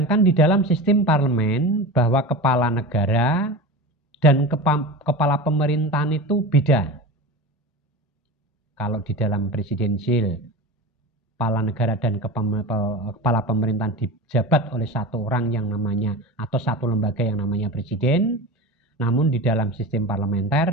di dalam sistem parlemen bahwa kepala negara dan kepala pemerintahan itu beda. Kalau di dalam presidensial, kepala negara dan kepala pemerintahan dijabat oleh satu orang yang namanya atau satu lembaga yang namanya presiden. Namun di dalam sistem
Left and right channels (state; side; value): normal; both; correlation 0.29